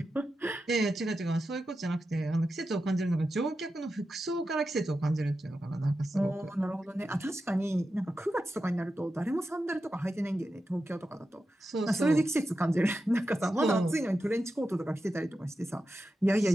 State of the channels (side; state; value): both; normal; correlation 0.90